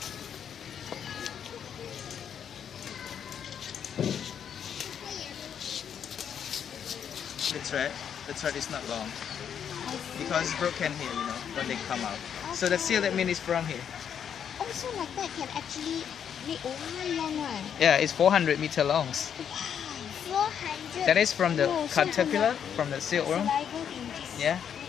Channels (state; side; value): quieter; right; 8.3 dB